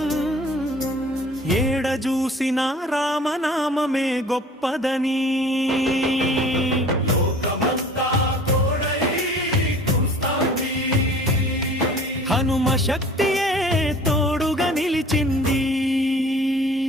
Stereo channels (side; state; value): both; normal; correlation 0.47